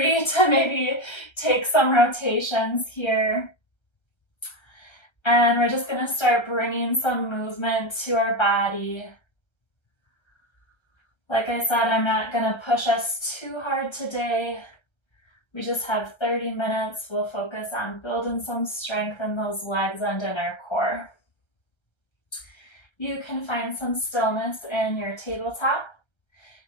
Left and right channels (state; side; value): late; right; 1.3 ms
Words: to maybe take some rotations here. And we're just going to start bringing some movement to our body. Like I said, I'm not going to push us too hard today. We just have 30 minutes. We'll focus on building some strength in those legs and in our core. You can find some stillness in your tabletop.